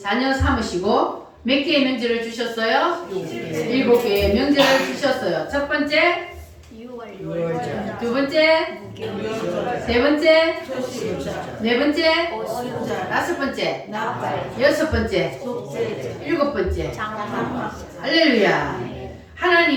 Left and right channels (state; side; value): identical; both; correlation 1.00